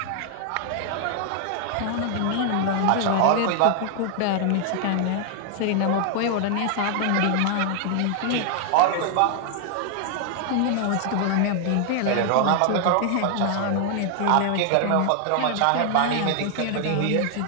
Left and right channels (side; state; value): both; different; correlation 0.00